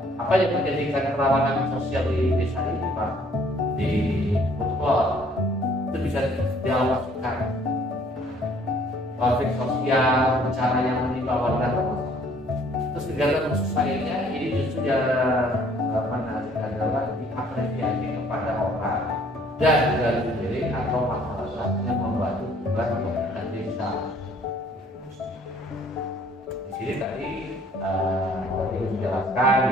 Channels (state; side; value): normal; both; correlation 0.59